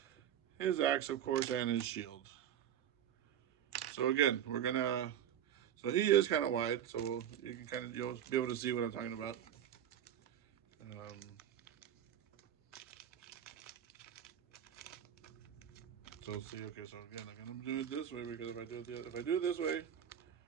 His axe, of course, and his shield. So again, so he is kind of wide, so you can you'll be able to see what I'm talking about. So see, okay, so again, I'm gonna do it this way because if I do it this way,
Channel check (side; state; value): left; quieter; 10.0 dB